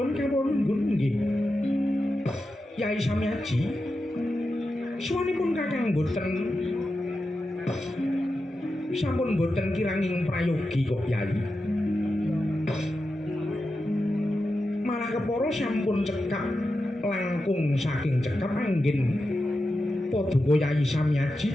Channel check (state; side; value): normal; both; correlation 0.90